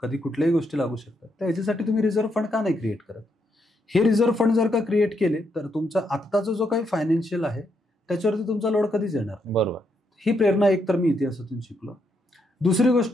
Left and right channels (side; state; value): both; normal; correlation 0.78